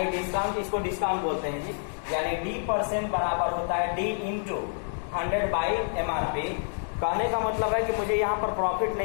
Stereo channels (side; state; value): right; silent; digital silence